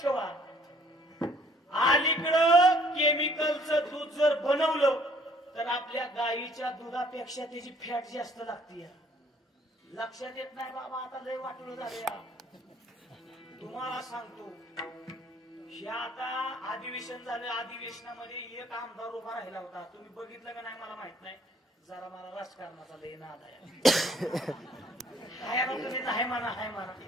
ठेवा. अलीकडं केमिकलचं दूध जर बनवलं तर आपल्या गाईच्या दुधापेक्षा त्याची फॅट जास्त लागते. लक्षात येत नाही बाबा. आता लय वाटलं झालं या. तुम्हाला सांगतो हे आता अधिवेशन झालं. अधिवेशनामध्ये एक आमदार उभा राहिला होता. तुम्ही बघितलं का नाही मला माहित नाही. जरा मला राजकारणाचा लय नाद आहे. तुम्ही नाही म्हणा हाय म्हणा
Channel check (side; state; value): both; normal; correlation 0.60